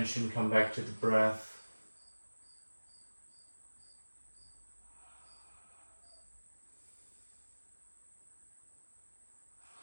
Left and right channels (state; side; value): inverted; both; correlation -1.00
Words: come back to the breath.